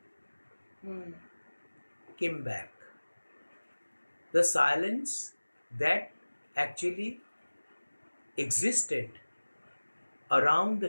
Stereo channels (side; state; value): both; inverted; correlation -1.00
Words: came back. The silence that actually existed around the